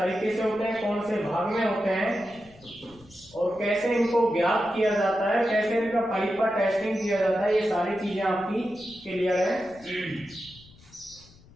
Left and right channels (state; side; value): noise; left; rumble, 24 dB below the sound